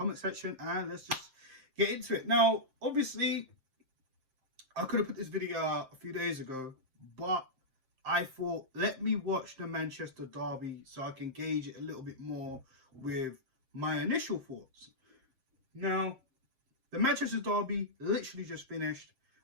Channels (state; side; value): late; left; 7.6 ms